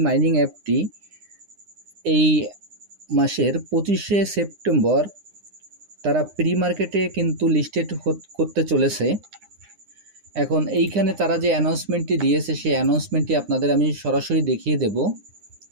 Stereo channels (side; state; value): left; late; 9.8 ms